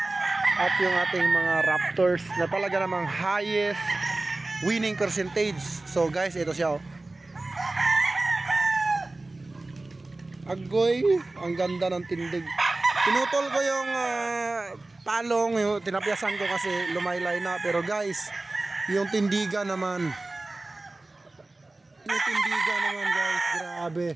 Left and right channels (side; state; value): left; quieter; 3.0 dB